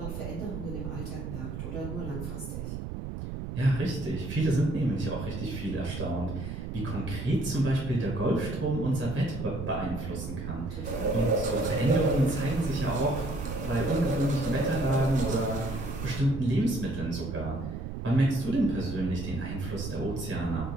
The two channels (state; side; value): noise; right; rumble, 6 dB below the sound